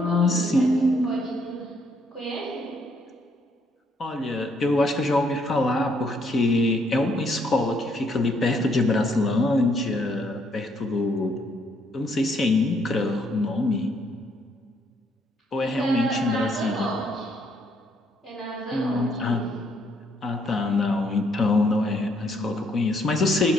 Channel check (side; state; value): both; normal; correlation 0.70